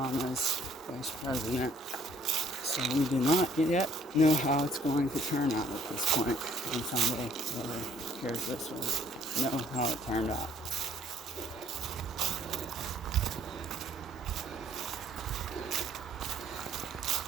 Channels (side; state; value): both; normal; correlation 0.61